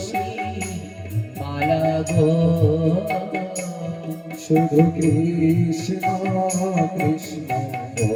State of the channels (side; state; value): both; identical; correlation 1.00